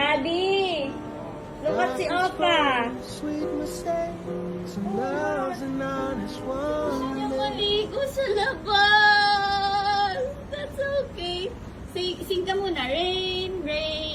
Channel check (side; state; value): both; identical; correlation 1.00